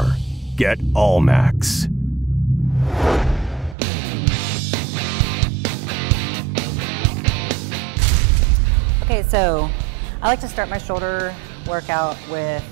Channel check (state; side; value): drops out; left; at 3.8 s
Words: Get Allmax. Okay, so I like to start my shoulder workout with